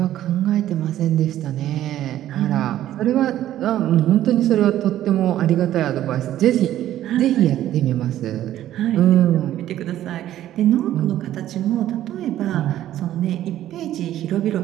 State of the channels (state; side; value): quieter; left; 12.7 dB